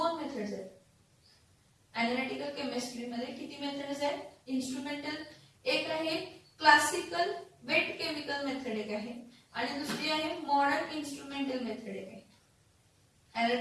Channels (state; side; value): identical; both; correlation 1.00